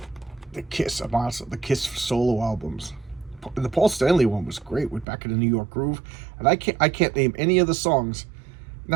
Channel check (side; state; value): left; drops out; at 5.1 s